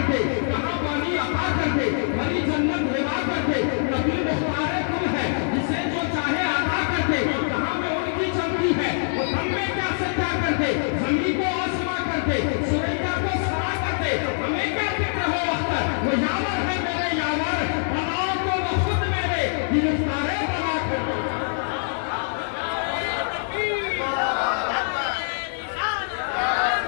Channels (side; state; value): right; silent; digital silence